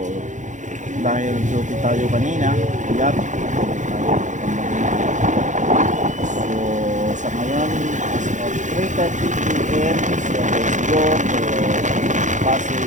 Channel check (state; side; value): late; left; 0.36 ms